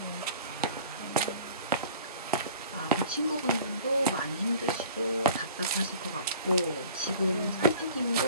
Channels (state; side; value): inverted; both; correlation -0.47